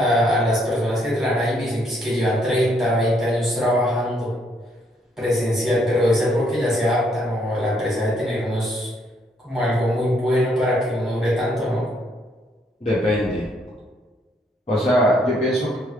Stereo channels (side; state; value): both; normal; correlation 0.70